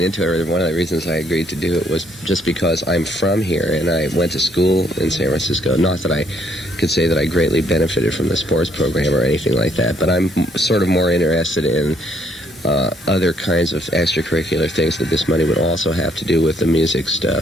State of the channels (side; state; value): both; normal; correlation 0.68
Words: into it, or one of the reasons I agreed to do it, was just because I'm from here and I went to school in San Francisco. Not that I could say that I greatly benefited from the sports program or anything like that, but I'm sort of more interested in other kinds of extracurricular things that this money would also have to do with the music